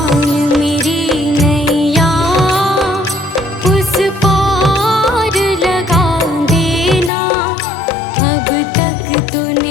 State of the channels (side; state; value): right; drops out; at 7.1 s